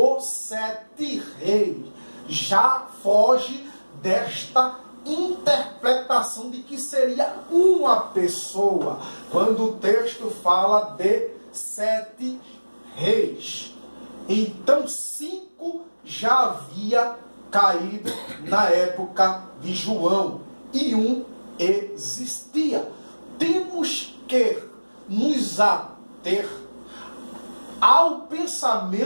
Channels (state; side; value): inverted; both; correlation -1.00